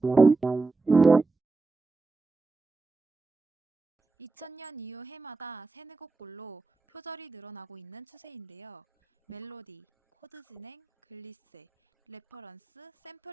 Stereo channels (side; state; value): left; quieter; 3.8 dB